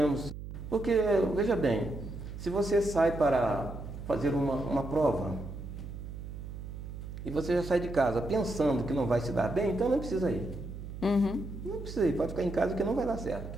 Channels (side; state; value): right; noise; hum, 10 dB below the sound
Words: Porque, veja bem, se você sai para fazer uma prova e você já sai de casa pensando que não vai se dar bem, então não precisa ir. Não precisa ir, pode ficar em casa que não vai dar